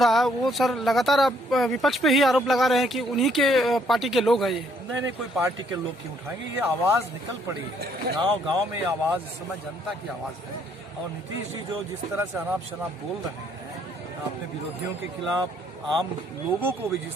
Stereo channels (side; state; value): both; normal; correlation 0.67